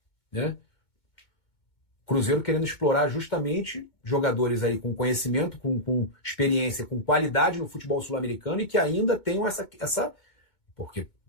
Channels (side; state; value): right; late; 2.2 ms